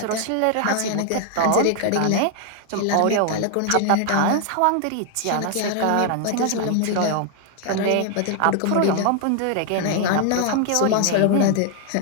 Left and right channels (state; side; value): different; both; correlation 0.00